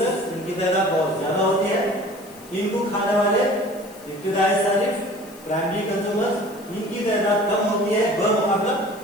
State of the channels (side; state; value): left; noise; hiss, 22 dB below the sound